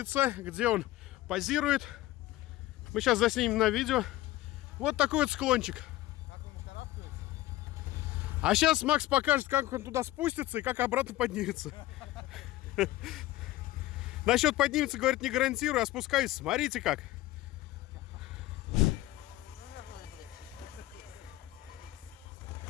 где он позирует. Мы сейчас заснимем на видео. Вот такой вот склончик. Как он карабкается? А сейчас Макс покажет, как он туда спустится и как обратно поднимется. Насчет поднимется, говорит, не гарантирую, а спускаюсь. Смотрите как.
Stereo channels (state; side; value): quieter; right; 16.4 dB